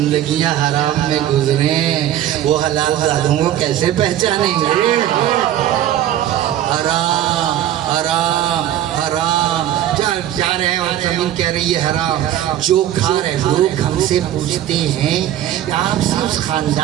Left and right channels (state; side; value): quieter; left; 12.0 dB